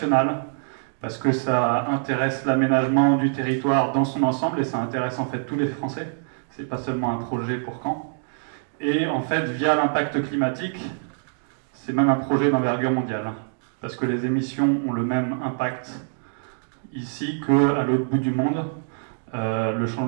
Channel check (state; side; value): silent; left; digital silence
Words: parce que ça intéresse l'aménagement du territoire dans son ensemble, et ça intéresse en fait tous les Français. C'est pas seulement un projet pour Caen. Et en fait, via l'impact climatique, c'est même un projet d'envergure mondiale, parce que les émissions ont le même impact ici qu'à l'autre bout du monde. Le